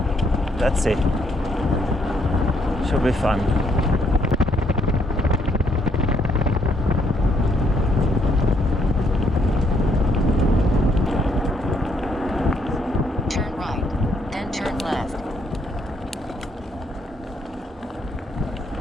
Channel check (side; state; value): both; normal; correlation 0.72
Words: let's see. Should be fun. Turn right, then turn left.